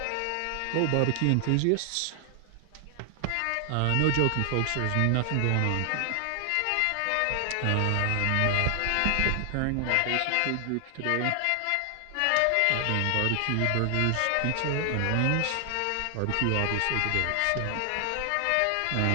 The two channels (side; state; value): both; different; correlation 0.00